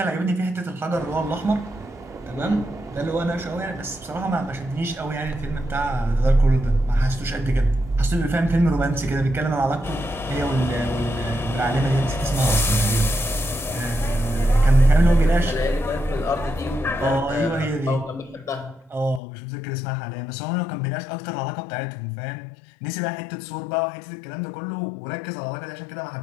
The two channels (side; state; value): right; drops out; at 19.2 s